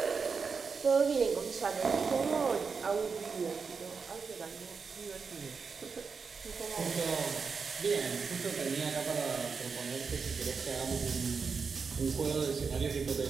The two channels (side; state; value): left; quieter; 5.3 dB